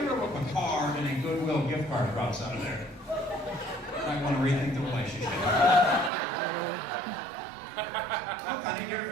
look a card and a Goodwill gift card drops out of there, you might want to rethink the relationship. Look, honey, get her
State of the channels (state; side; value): drops out; left; at 6.1 s